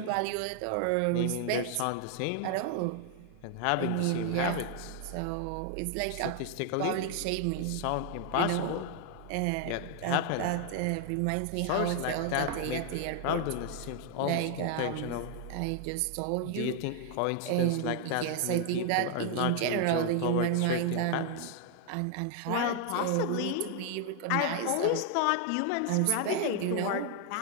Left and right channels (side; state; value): both; different; correlation 0.00